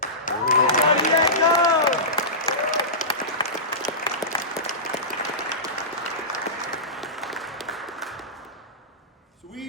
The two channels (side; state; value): both; normal; correlation -0.19